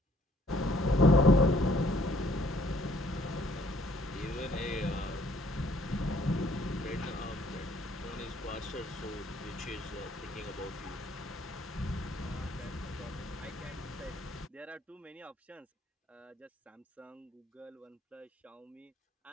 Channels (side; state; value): both; normal; correlation 0.63